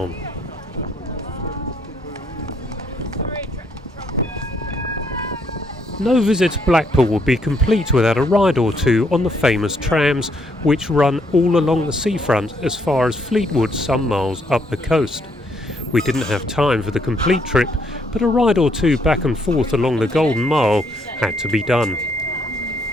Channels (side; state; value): both; normal; correlation 0.71